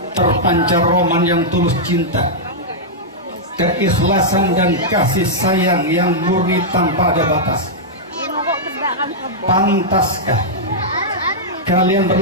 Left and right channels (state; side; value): normal; both; correlation -0.08